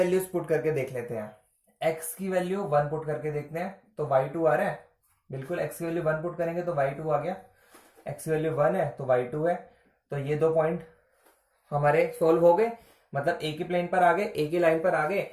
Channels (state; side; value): identical; both; correlation 1.00